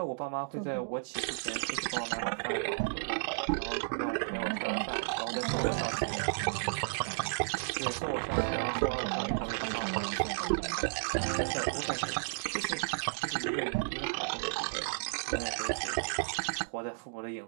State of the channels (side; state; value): left; silent; digital silence